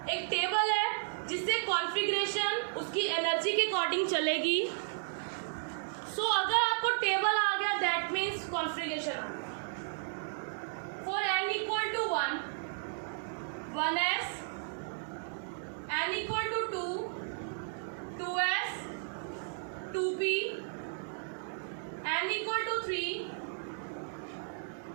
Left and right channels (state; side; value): silent; left; digital silence